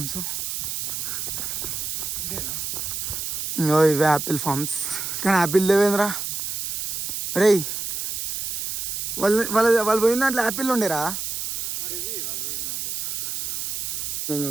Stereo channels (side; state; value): right; noise; hiss, 3 dB below the sound